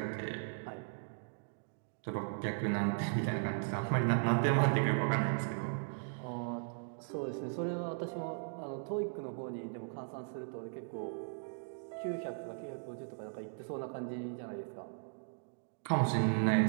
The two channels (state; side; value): silent; left; digital silence